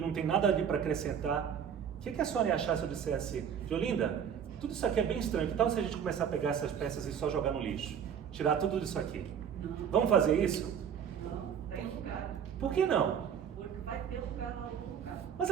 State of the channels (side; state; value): left; quieter; 8.1 dB